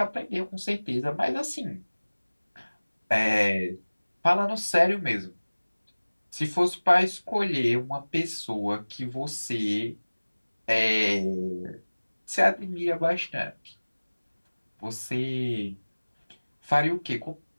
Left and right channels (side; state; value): both; inverted; correlation -1.00